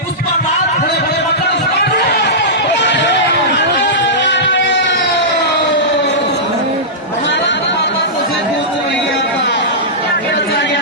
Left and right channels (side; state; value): both; normal; correlation -0.15